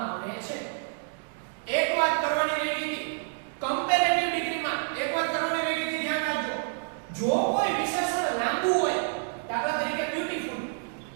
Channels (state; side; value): silent; left; digital silence